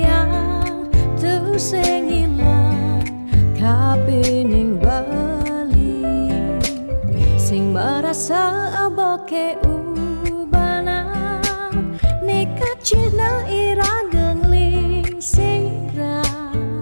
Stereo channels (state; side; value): inverted; both; correlation -1.00